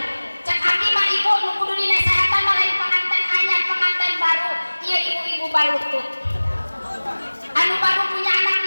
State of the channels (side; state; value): both; inverted; correlation -1.00